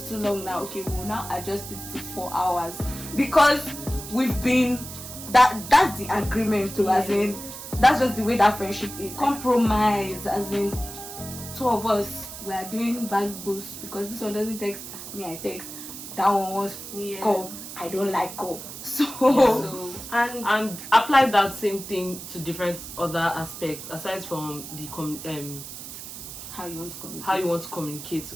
too long now. Okay, we'll now adjust it to 4 hours because we've been that's the agreement too, as in that's just the way that friendship is. Compromise, as in 2 of us we are doing back boost because this one doesn't text me, I text. That one wants call. I don't like call. So and apply that same thing to different other aspects aside from the how you want to communicate.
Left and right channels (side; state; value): right; noise; hiss, 11 dB below the sound